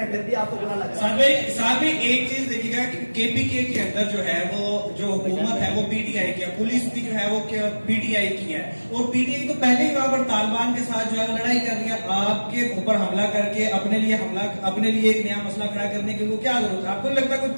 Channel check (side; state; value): both; inverted; correlation -1.00